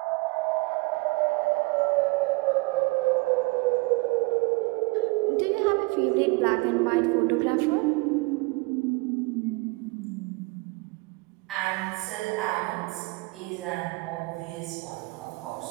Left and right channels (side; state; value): left; quieter; 26.5 dB